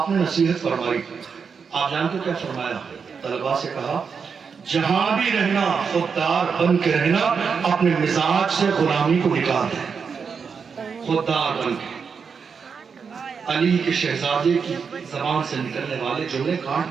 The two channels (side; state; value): left; quieter; 5.9 dB